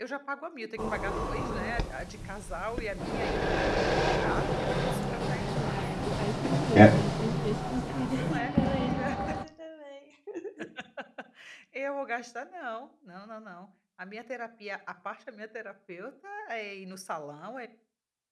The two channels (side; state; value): both; identical; correlation 1.00